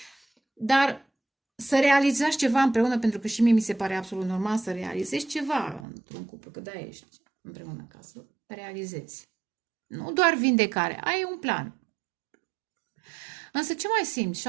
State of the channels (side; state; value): left; drops out; at 5.9 s